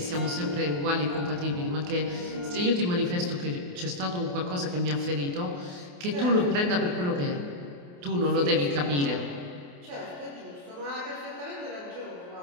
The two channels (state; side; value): late; left; 28 ms